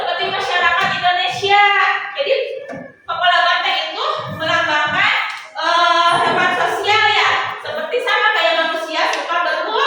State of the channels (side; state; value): both; identical; correlation 1.00